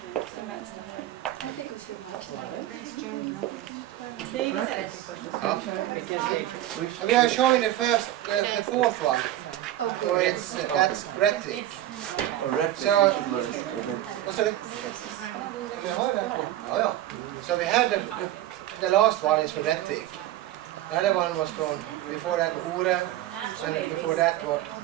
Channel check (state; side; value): quieter; left; 13.6 dB